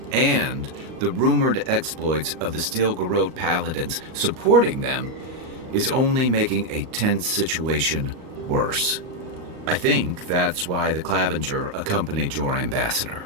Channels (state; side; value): late; left; 38 ms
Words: and the rumored exploits of the Steel Garrote paladins supporting them is only making a tense situation worse. I think that's why the Clavenger accompanied your ambassador.